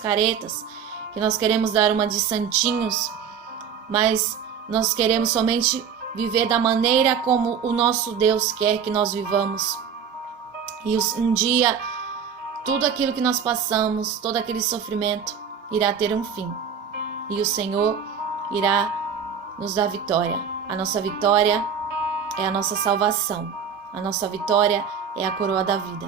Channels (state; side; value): quieter; left; 7.2 dB